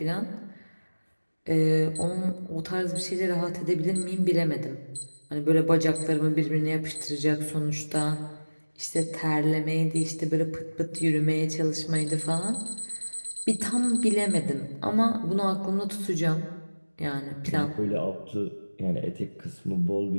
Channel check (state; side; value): inverted; both; correlation -1.00